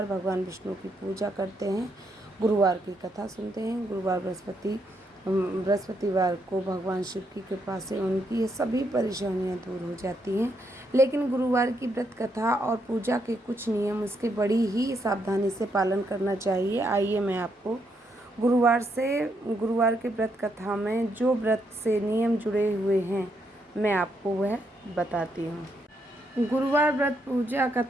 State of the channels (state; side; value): normal; both; correlation 0.77